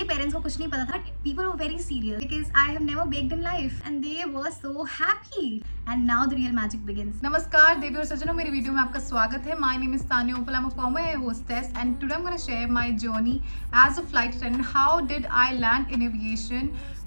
पेरेंट्स को कुछ नहीं पता था, but people were very serious because I have never baked in life and they were so happy and now the real magic begins. नमस्कार देवी और सज्जनों, मेरी वीडियो में आपका स्वागत है। My name is Tanya Uppal, I am a former air hostess and today I am gonna share my journey as a flight attendant. How did I land in aviation?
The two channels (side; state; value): both; inverted; correlation -1.00